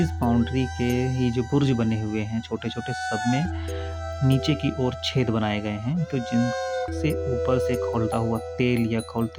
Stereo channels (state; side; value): identical; both; correlation 1.00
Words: इस बाउंड्री के ये जो बुर्ज बने हुए हैं छोटे छोटे, सब में नीचे की ओर छेद बनाए गए हैं, तो जिनसे ऊपर से खौलता हुआ तेल या